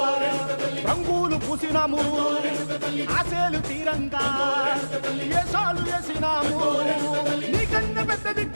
రంగులు పూసినాము, ఆశలు తీరంగా ఏసాలు వేసినాము. నీకన్నా పెద్ద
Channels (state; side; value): inverted; both; correlation -1.00